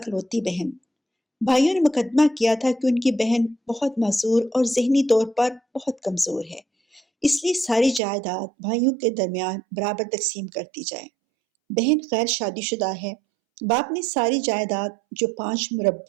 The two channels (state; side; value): drops out; left; at 8.0 s